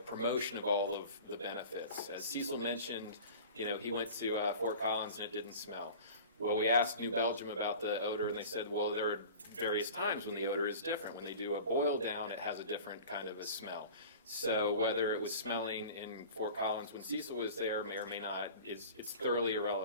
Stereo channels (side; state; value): both; inverted; correlation -0.39